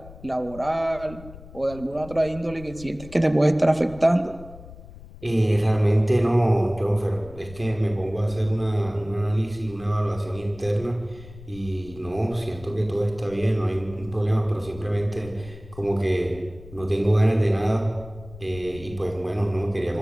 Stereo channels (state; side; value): noise; left; rumble, 17 dB below the sound